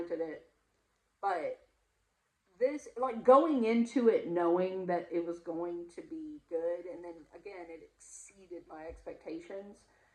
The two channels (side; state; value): both; identical; correlation 1.00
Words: it. But this, like, going into it knowing that it was going to be good, and then again, it exceeded my expectations.